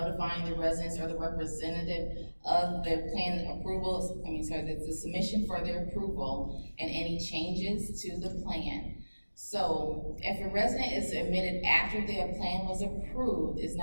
the residents or the representative of the plan approval, the submission for their approval and any changes to the plan. So if a resident is admitted after their plan was approved, it's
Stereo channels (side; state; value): both; inverted; correlation -1.00